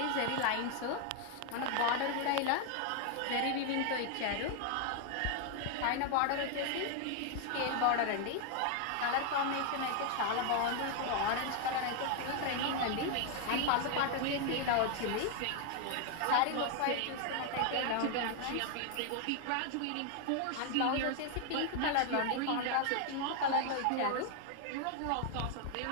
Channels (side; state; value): both; different; correlation 0.00